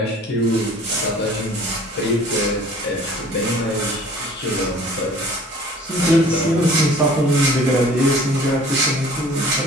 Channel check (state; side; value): normal; both; correlation 0.49